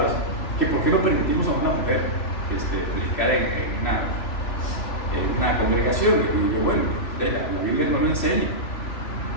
que por qué no permitimos a una mujer predicar en una congregación. Y yo, bueno, la Biblia no lo enseña,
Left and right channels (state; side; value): late; right; 3.0 ms